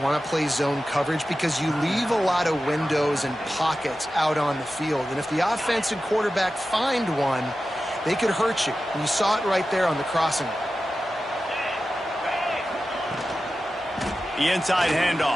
to play zone coverage, because you leave a lot of windows and pockets out on the field. And if the offensive quarterback find one, they could hurt you. And you saw it right there on the crossing. The inside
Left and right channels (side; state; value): both; normal; correlation 0.93